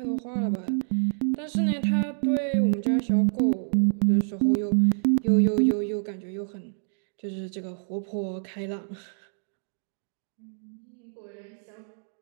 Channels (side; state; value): left; silent; digital silence